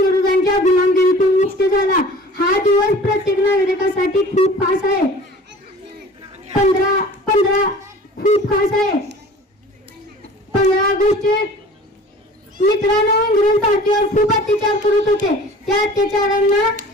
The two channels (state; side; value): normal; both; correlation 0.44